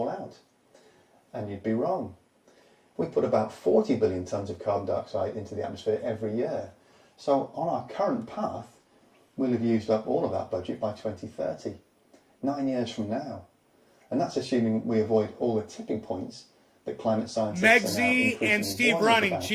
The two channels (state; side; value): identical; both; correlation 1.00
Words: out. And you'd be wrong. We put about 40 billion tonnes of carbon dioxide into the atmosphere every year. So on our current path, we'll have used up all of that budget by 2030, 9 years from now. And that's assuming we avoid all the tipping points that climate scientists are now Megzy and Steve Running, about.